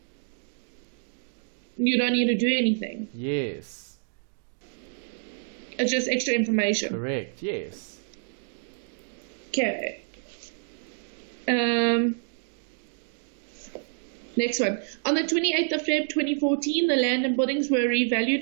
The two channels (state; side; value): silent; left; digital silence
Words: You don't need to do anything. Yes. It's just extra information. Correct, yes. Okay. Next one. On the 28th of Feb 2014, the land and buildings were revalued